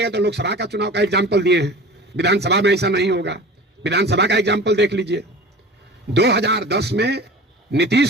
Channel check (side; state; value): both; normal; correlation 0.38